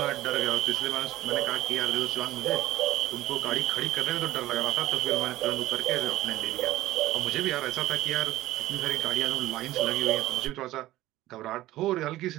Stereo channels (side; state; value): left; quieter; 16.0 dB